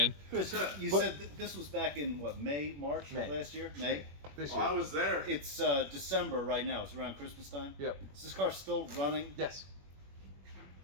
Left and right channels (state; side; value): late; left; 21 ms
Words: Chris, you said this was back in, what, March last year? May? This Oh, year. I was there. It's December right now. It's around Christmas time. Yep. Is this car still running? Yes.